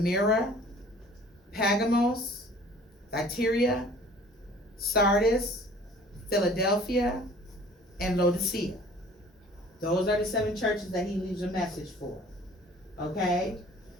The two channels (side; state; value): both; normal; correlation 0.50